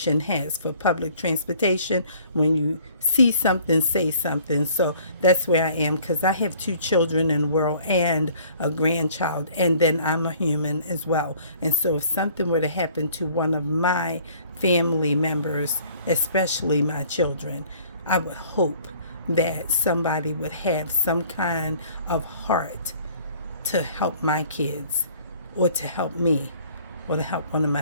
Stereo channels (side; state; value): both; inverted; correlation -0.55